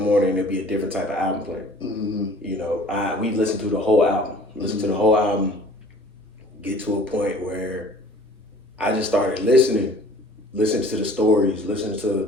and there'd be a different type of album playing. You know, we listened to the whole album, get to a point where I just started listening to the stories, listening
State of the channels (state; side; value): normal; both; correlation 0.49